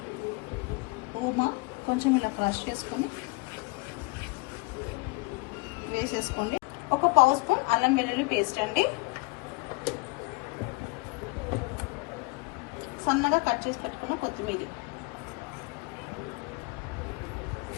ఓమా కొంచెం ఇలా క్రష్ చేసుకొని వేసేసుకోండి. ఒక 1/2 స్పూన్ అల్లం వెల్లుల్లి పేస్ట్ అండి, సన్నగా కట్ చేసి పెట్టుకున్న కొత్తిమీర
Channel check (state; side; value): quieter; right; 27.7 dB